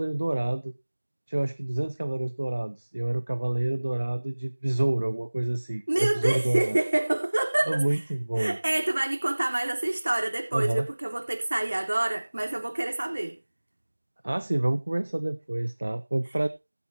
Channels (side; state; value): both; inverted; correlation -1.00